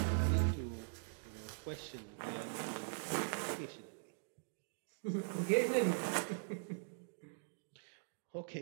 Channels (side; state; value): left; silent; digital silence